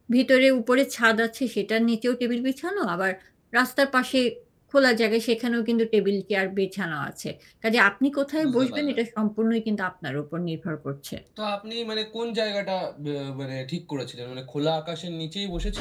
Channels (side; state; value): both; identical; correlation 1.00